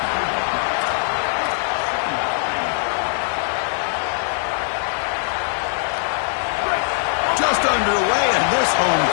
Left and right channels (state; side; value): silent; right; 65 dB below the other